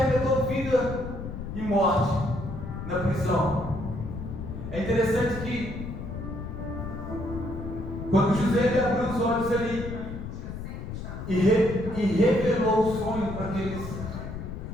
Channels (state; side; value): noise; left; rumble, 8 dB below the sound